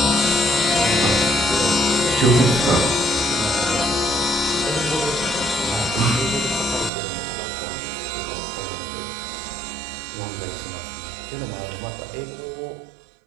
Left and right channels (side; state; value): left; drops out; at 6.9 s